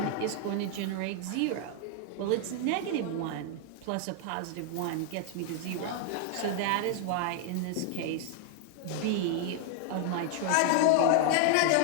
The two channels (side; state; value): both; different; correlation 0.00